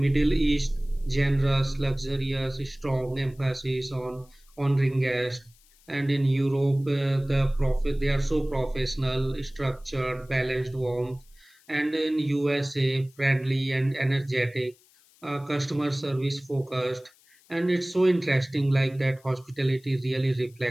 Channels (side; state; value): left; noise; hiss, 30 dB below the sound